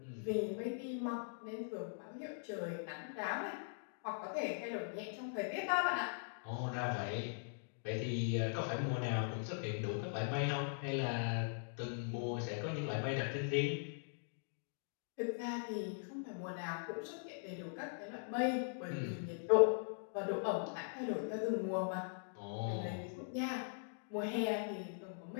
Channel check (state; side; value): silent; right; digital silence